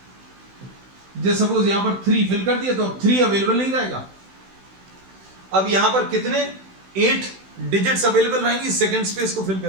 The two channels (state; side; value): late; left; 16 ms